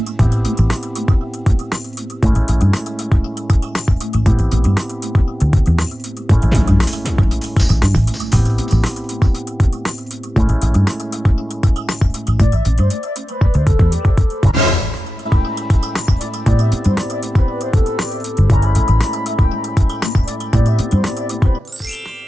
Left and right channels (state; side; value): normal; both; correlation 0.94